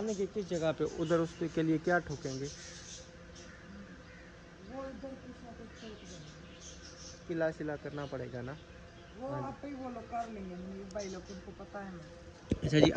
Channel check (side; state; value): both; identical; correlation 1.00